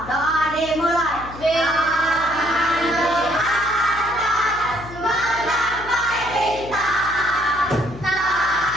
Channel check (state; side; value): noise; left; hum, 15 dB below the sound